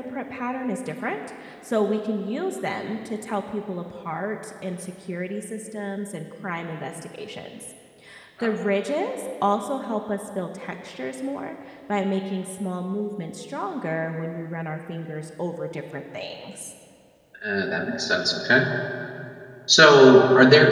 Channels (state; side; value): identical; both; correlation 1.00